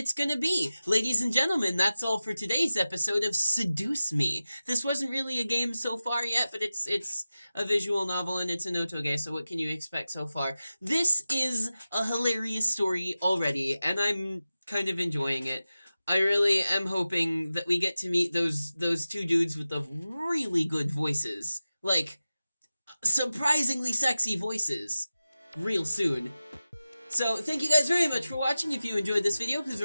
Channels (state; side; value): inverted; both; correlation -0.95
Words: gonna be. Ladies and gentlemen, that's all for today's episode of Seduce Me. This wasn't really a game so far yet, but it's a visual novel and it's an otoge, so what can you expect so far? This is a hilarious story already, and I'm kind of enjoying it. I really am hoping that we get to meet those two dudes with the really good voices. Like, surprisingly sexy voices. Real soon. So, thank you guys very much for watching. If you enjoyed this video, please